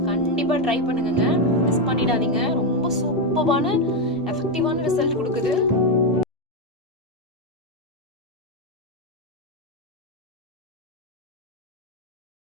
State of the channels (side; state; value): both; normal; correlation 0.06